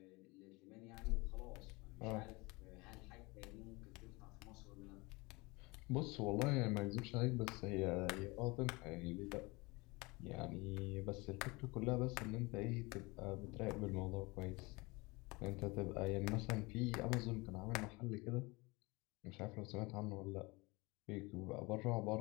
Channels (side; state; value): right; quieter; 24.8 dB